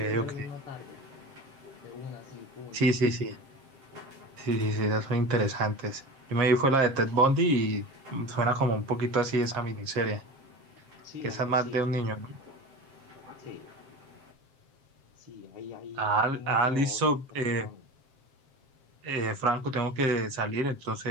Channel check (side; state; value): left; late; 7.5 ms